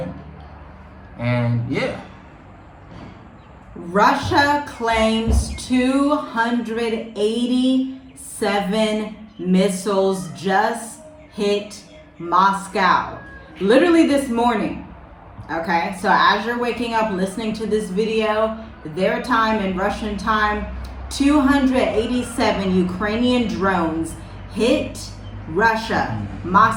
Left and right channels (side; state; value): both; identical; correlation 1.00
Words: And yeah. Russia claims 287 missiles just hit Moscow. Literally this morning. Okay, so as you're waking up listening to this video, their time and Russian time, 287 Ukrainian drones hit Russia,